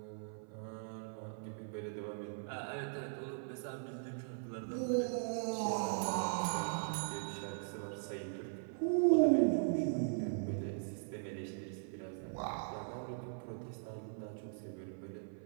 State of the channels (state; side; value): silent; left; 51 dB below the other